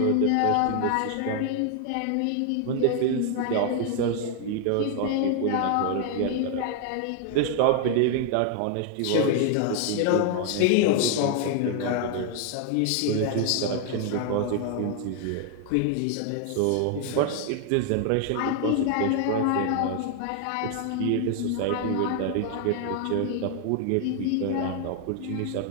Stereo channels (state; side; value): different; both; correlation 0.00